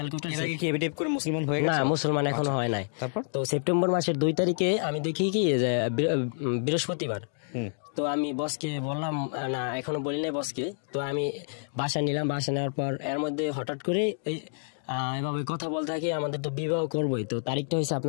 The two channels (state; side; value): silent; right; digital silence